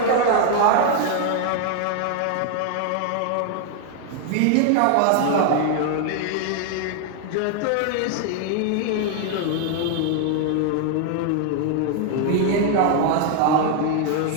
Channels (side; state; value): both; different; correlation 0.00